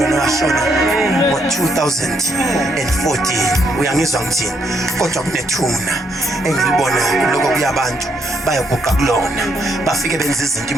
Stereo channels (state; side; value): normal; both; correlation 0.75